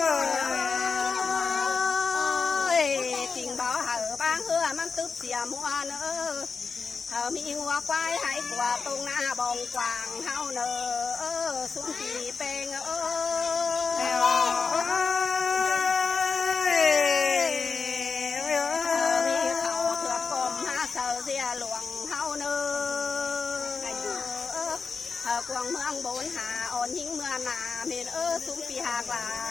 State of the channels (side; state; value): right; quieter; 5.0 dB